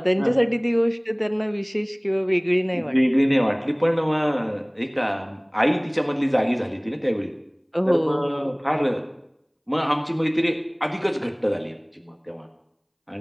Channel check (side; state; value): both; identical; correlation 1.00